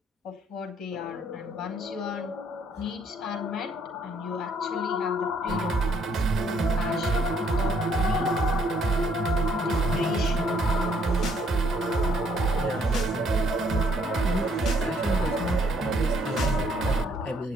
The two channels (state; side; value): normal; both; correlation 0.67